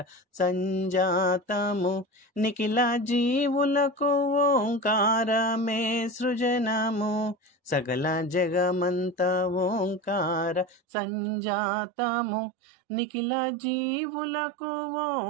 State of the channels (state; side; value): drops out; left; at 10.8 s